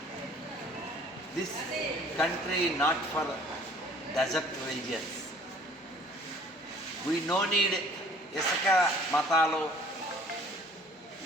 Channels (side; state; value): both; normal; correlation 0.54